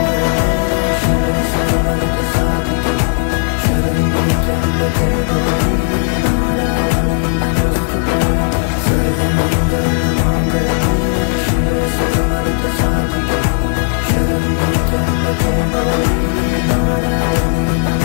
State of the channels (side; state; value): right; silent; 59 dB below the other